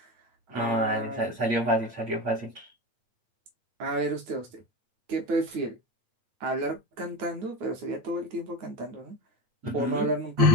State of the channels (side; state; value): left; late; 9.2 ms